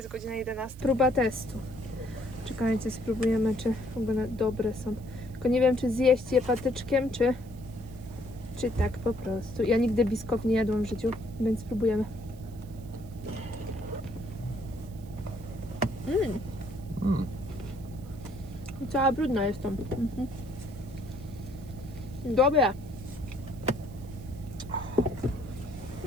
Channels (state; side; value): noise; right; hiss, 25 dB below the sound